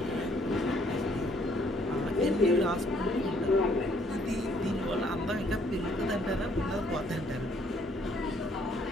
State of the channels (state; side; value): normal; both; correlation 0.65